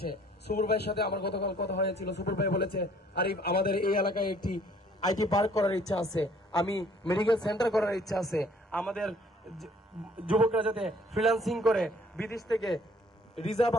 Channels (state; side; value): normal; both; correlation 0.58